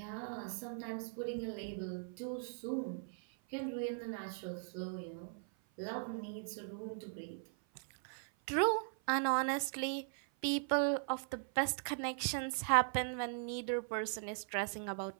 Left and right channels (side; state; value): left; silent; 52 dB below the other